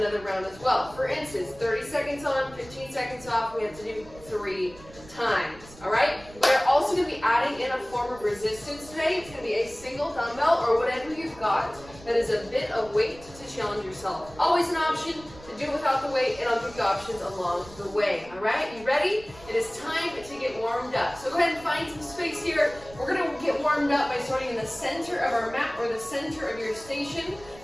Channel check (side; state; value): right; noise; rumble, 20 dB below the sound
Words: round as well. For instance, 30 seconds on, 15 seconds off, we have to do 3 times, all right? We're also going to be adding in a form of resistance today. It's going to be a single dumbbell or whatever you've got that is a bit of weight to challenge yourself. Always an option to do it without the weight, and I'll give you options along the way, all right? You ready? It is time to get warmed up. So go ahead and find some space here. We're going to get warmed up by starting in the center of our mat or the center of your station.